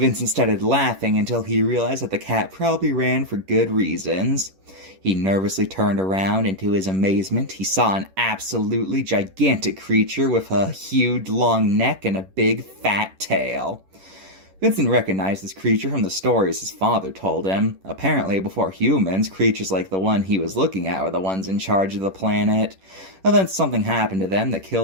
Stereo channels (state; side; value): late; left; 11 ms